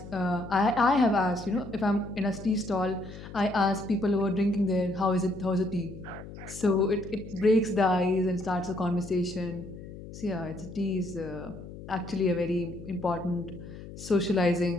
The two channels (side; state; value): left; noise; hum, 13 dB below the sound